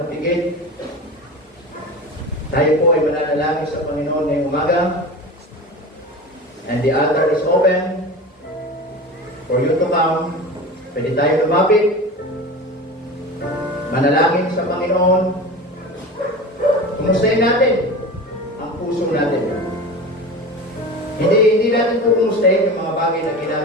tayo po ay mananalangin sa Panginoon ngayong umaga. And the altar is open for you to come. Pwede tayo lumapit. Manalangin sa Panginoon. Kumustahin natin ang puso natin. Hindi natin po kumustahin yung mga bagay na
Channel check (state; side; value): normal; both; correlation 0.31